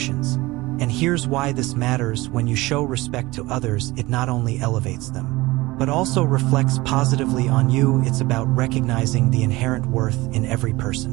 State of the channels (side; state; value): left; quieter; 20.6 dB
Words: And here's why this matters. When you show respect to others, it not only elevates them, but also reflects positively on you. It's about recognizing the inherent worth in every